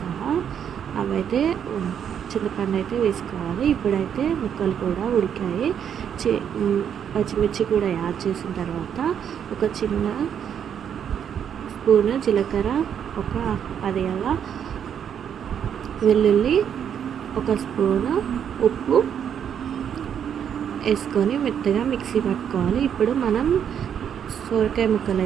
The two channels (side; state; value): left; quieter; 8.5 dB